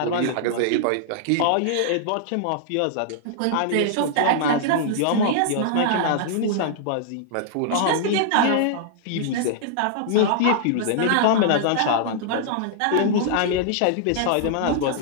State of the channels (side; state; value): both; different; correlation -0.01